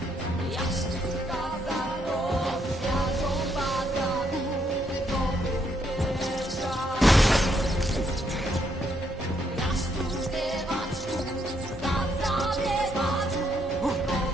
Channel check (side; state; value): both; normal; correlation 0.74